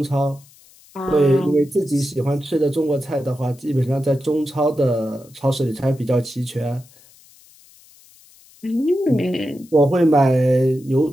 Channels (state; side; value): noise; left; hiss, 27 dB below the sound